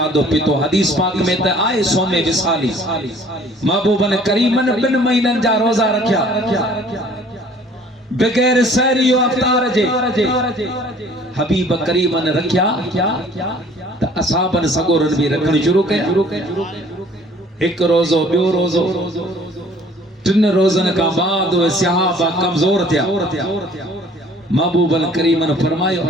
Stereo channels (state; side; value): normal; both; correlation 0.54